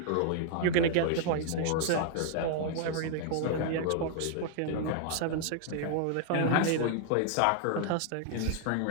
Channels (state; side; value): different; both; correlation 0.00